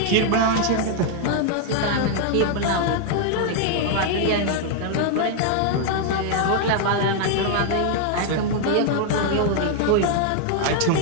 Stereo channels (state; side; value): different; both; correlation 0.00